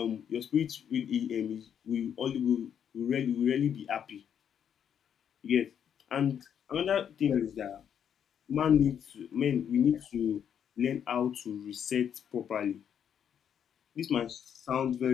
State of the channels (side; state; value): right; quieter; 8.5 dB